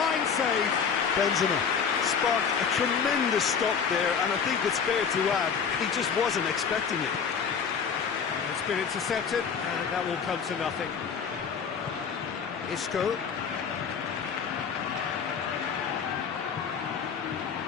save. Benzema sparked a tremendous stop there, and I think it's fair to add, he just wasn't expecting it. It's been intercepted, and that will come to nothing. Isco.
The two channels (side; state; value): right; quieter; 6.5 dB